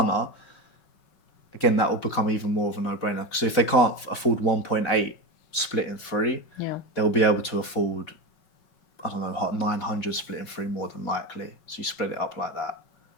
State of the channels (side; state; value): right; late; 5.4 ms